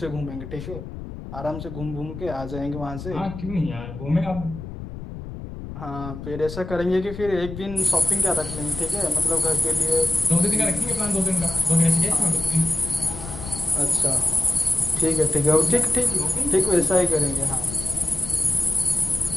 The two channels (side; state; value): left; noise; rumble, 10 dB below the sound